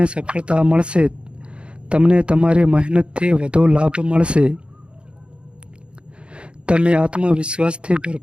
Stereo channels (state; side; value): late; left; 0.056 ms